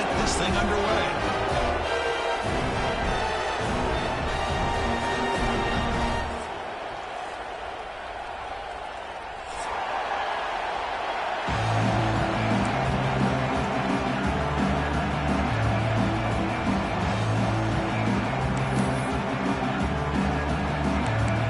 this thing underway.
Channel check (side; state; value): both; identical; correlation 1.00